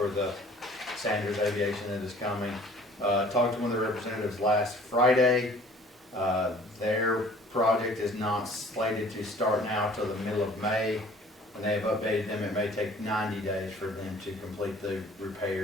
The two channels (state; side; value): normal; both; correlation 0.52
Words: the Sanders Aviation that is coming. Talked to one of the representatives last Friday. Their project is not slated to start now till the middle of May. And they have updated them, it may take 90 days for them to complete the